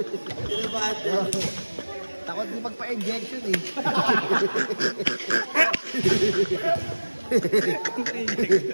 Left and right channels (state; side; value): inverted; both; correlation -1.00